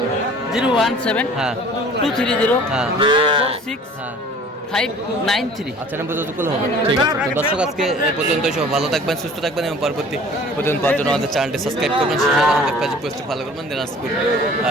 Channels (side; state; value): both; normal; correlation 0.48